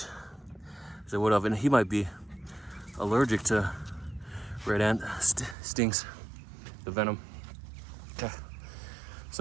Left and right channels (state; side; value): drops out; left; at 5.6 s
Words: as I would have. And he might be allergic to red ant stings, the venom. Okay.